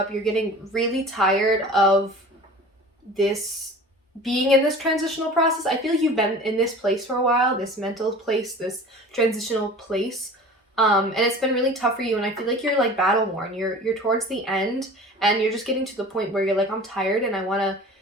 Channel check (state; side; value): normal; both; correlation 0.41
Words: You're getting really tired of this being in this transitional process. I feel like you've been in this place for a while, this mental place, this transitional place, and it's been really tough for you, and I feel like you're like battle worn. You're towards the end, and you're just getting to the point where you're like, I'm tired and I want to